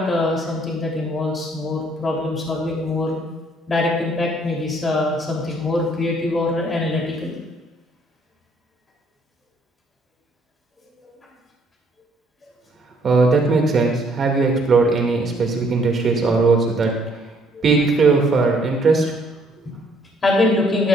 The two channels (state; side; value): normal; both; correlation 0.65